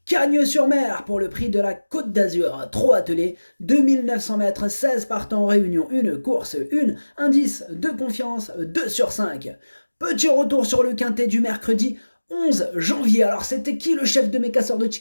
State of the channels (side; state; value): both; inverted; correlation -1.00